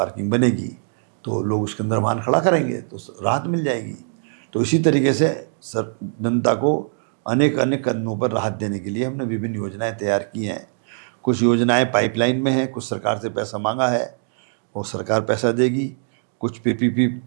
बनेगी तो लोग उसके अंदर वाहन खड़ा करेंगे तो राहत मिल जाएगी। तो इसी तरीके से जनता को अनेक कदमों पर राहत देने के लिए हमने विभिन्न योजनाएं तैयार की हैं। कुछ योजनाएं पाइपलाइन में हैं, कुछ सरकार से पैसा मांगा है और सरकार पैसा देगी, कुछ पीपीपी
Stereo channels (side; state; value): left; silent; digital silence